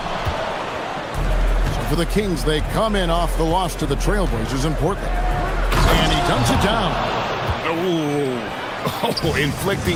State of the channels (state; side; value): identical; both; correlation 1.00